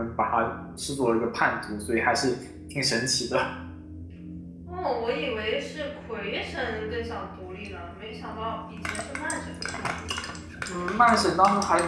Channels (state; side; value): identical; both; correlation 1.00